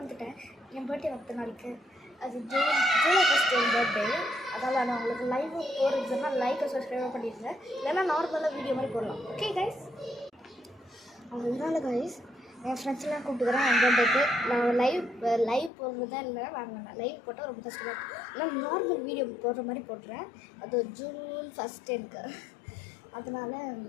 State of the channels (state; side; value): drops out; right; at 15.7 s